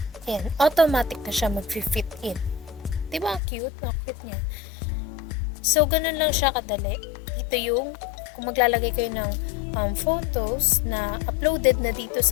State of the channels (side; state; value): right; drops out; at 3.4 s